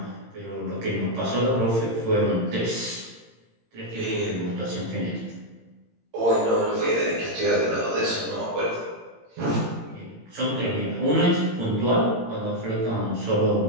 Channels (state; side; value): late; left; 18 ms